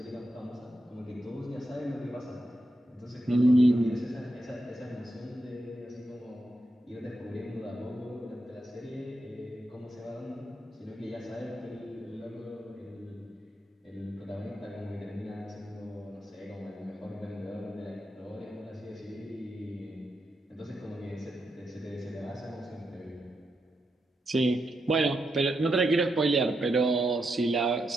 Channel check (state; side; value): normal; both; correlation 0.84